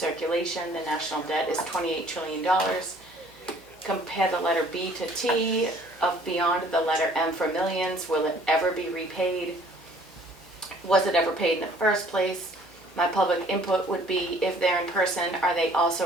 The national debt is $28 trillion. Compare the letter B to T of beyond the letter M for millions. Will it ever be repaid? Was it ever paid in the first place? My public input would be, if they're in person, are they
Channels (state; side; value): normal; both; correlation 0.55